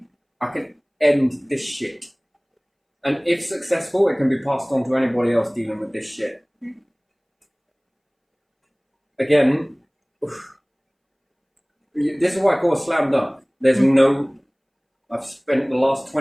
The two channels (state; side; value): identical; both; correlation 1.00